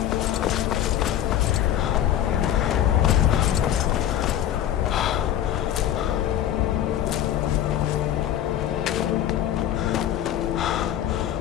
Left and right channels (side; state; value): right; quieter; 11.2 dB